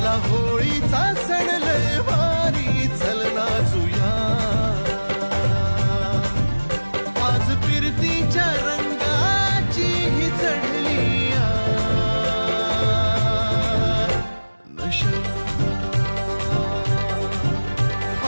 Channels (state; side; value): inverted; both; correlation -1.00